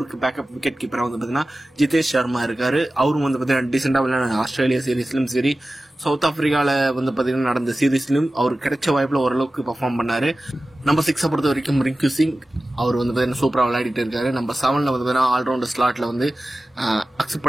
பேக்கப் விக்கெட் கீப்பரா வந்து பாத்தீங்கன்னா ஜிதேஷ் சர்மா இருக்காரு. அவரும் வந்து பாத்தீங்கன்னா டீசெண்டா விளையாட ஆஸ்திரேலியா சீரீஸ்லயும் சரி, சவுத் ஆப்பிரிக்கால வந்து பாத்தீங்கன்னா நடந்த சீரீஸ்லயும் அவருக்கு கிடைச்ச வாய்ப்புல ஓரளவுக்கு பெர்ஃபார்ம் பண்ணாரு. நம்பர் 6 பொறுத்த வரைக்கும் ரிங்கு சிங், அவர் வந்து பாத்தீங்கன்னா சூப்பரா விளையாடிட்டு இருக்காரு. நம்பர் 7ல வந்து பாத்தீங்கன்னா ஆல்ரவுண்டர் ஸ்லாட்ல வந்து அக்ஷர்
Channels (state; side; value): normal; both; correlation 0.96